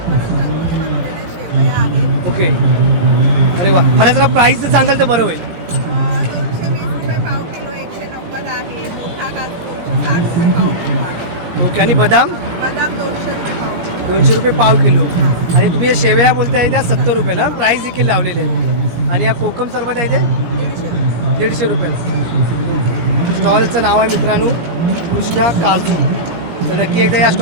परत घरगुती बनवलेल्या शेवया आहेत. ओके, अरे वा, मला जरा प्राईस सांगाल तर बरं होईल. 220 रुपये पाव किलो, 190 आहे. मोठा काजू 260 रुपये पाव किलो आहे. ओके, आणि बदाम बदाम 200 रुपये पाव किलो. 200 रुपये पाव किलो. आणि तुम्ही या शेवया बोलताय त्या 70 रुपयाला प्राईस देखील लावलेले आहेत. आणि या कोकम सरबत आहे ते 150 रुपयाला. ओके, स्टॉलचं नाव आहे मित्रांनो कृष्णा काजू. तर नक्की एकदा या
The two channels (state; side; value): late; left; 17 ms